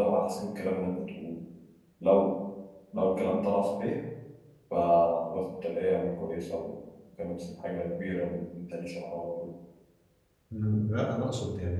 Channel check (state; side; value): identical; both; correlation 1.00